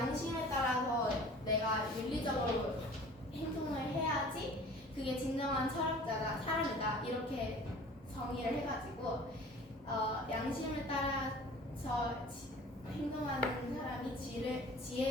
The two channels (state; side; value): normal; both; correlation 0.45